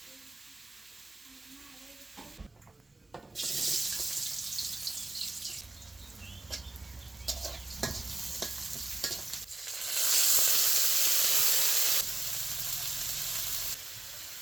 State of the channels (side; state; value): left; quieter; 3.1 dB